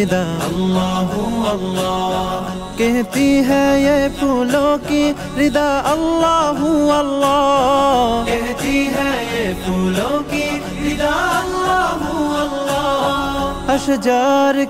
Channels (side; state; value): both; identical; correlation 1.00